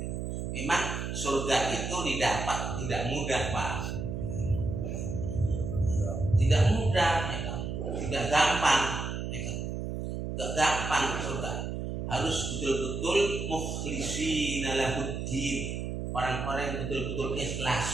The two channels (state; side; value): noise; right; hum, 4 dB below the sound